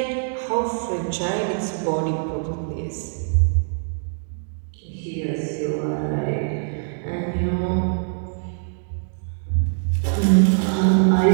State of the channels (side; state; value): left; silent; digital silence